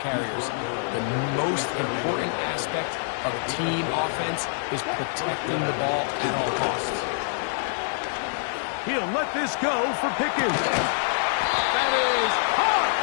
carriers, the most important aspect of team offense is protecting the ball at all costs. He'll let this go for Pickens. That is hard.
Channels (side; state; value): right; silent; digital silence